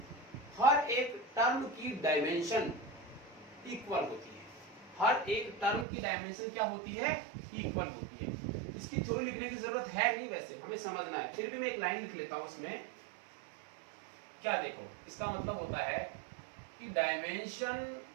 हर एक टर्म की डायमेंशन इक्वल होती है। हर एक टर्म की डायमेंशन क्या होती है? इक्वल होती है। इसकी थ्योरी लिखने की जरूरत है नहीं, वैसे हमें समझना है, फिर भी मैं एक लाइन लिख लेता हूं इसमें। क्या देखो, इसका मतलब होता है कि dimension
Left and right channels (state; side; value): drops out; left; at 5.9 s